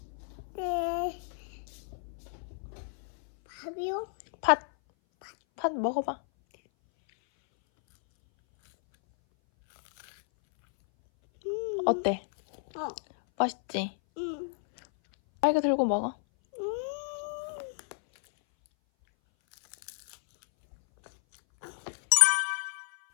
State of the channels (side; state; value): right; silent; 57 dB below the other